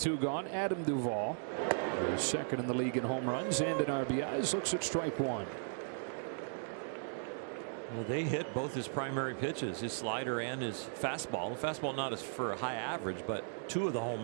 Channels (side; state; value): left; silent; digital silence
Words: gone. Adam Duvall, who's second in the league in home runs and in RBIs, looks at strike 1. Well, they hit both his primary pitches, his slider and his fastball. The fastball not as for a high average, but 2 of the